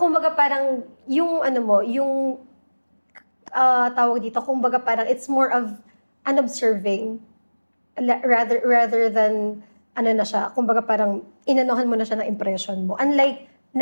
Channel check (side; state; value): both; inverted; correlation -1.00